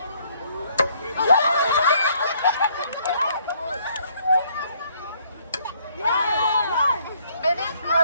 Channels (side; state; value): both; inverted; correlation -0.65